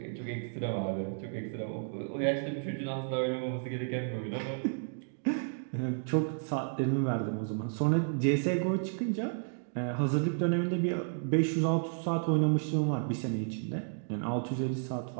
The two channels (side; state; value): left; silent; digital silence